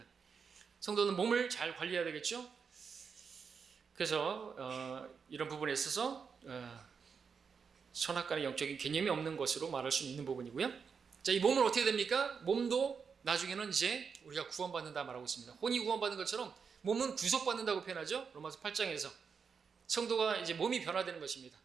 성도는 몸을 잘 관리해야 되겠죠. 그래서 이런 부분에 있어서 선악간의 영적인 개념이 없는 것으로 말할 수 있는 부분이고요. 자, 이 몸은 어떻게 됩니까? 몸도 나중에는 이제 우리가 구원받는다 말하고 있습니다. 혼이 구원받는 것처럼 몸은 구속받는다고 표현하죠. 로마서 8장에서 성도가 이제 몸이 변화되는 것입니다.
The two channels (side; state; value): left; quieter; 6.0 dB